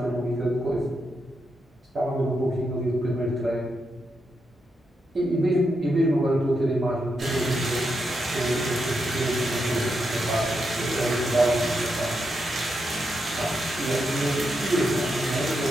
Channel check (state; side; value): normal; both; correlation 0.84